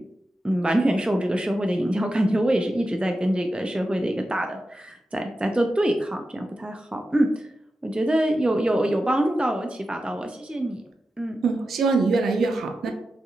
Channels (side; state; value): both; normal; correlation 0.91